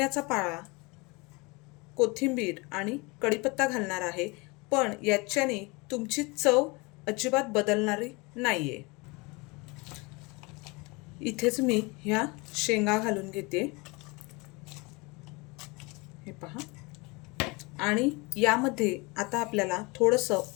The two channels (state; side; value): quieter; right; 26.7 dB